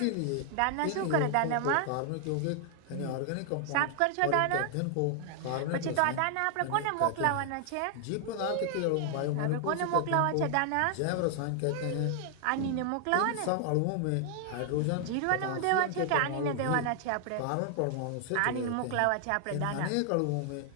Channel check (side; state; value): both; different; correlation 0.00